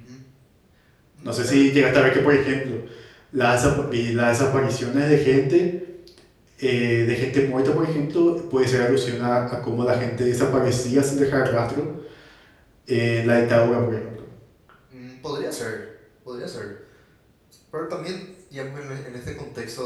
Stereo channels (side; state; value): both; identical; correlation 1.00